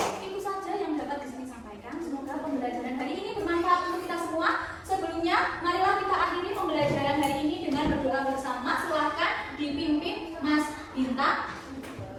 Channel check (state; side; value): identical; both; correlation 1.00